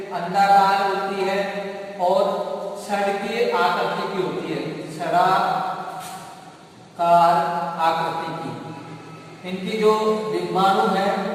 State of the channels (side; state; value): both; identical; correlation 1.00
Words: अंडाकार होती है और छड़के आकृति की होती है, छड़ाकार आकृति की। इनकी जो बिंबाणु है,